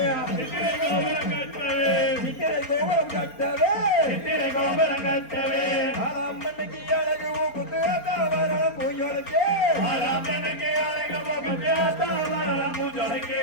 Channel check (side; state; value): right; late; 4.3 ms